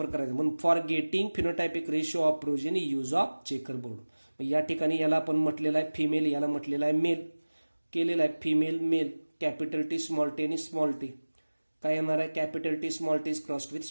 करायचा. म्हणून for getting phenotypic ratio of progeny use of checker board. या ठिकाणी याला आपण म्हटलेलं आहे फिमेल, याला म्हटलेलं आहे मेल. केलेलं आहे female male, capital T small T आणि स्मॉल टी. काय येणार आहे? Capital T small T is crossed with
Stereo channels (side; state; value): both; inverted; correlation -1.00